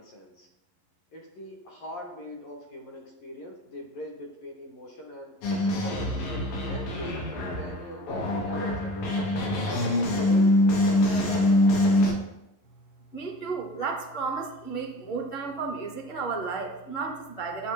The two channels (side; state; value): right; late; 12 ms